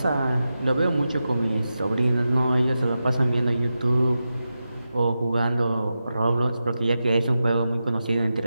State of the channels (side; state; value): both; inverted; correlation -0.91